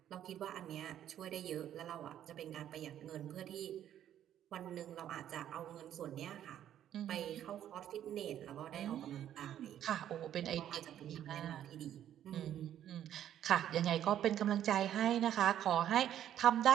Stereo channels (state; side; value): quieter; left; 10.9 dB